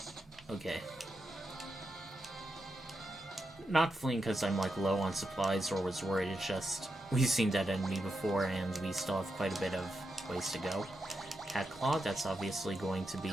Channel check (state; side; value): normal; both; correlation 0.86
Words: Okay. Not fleeing because I'm like low on supplies or was worried, it's just we've seen that enemy before and we still have quite a bit of ways to go. Cat Claw, that's obviously going to be...